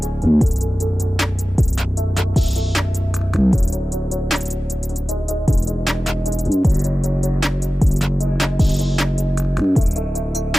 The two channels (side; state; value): both; normal; correlation 0.96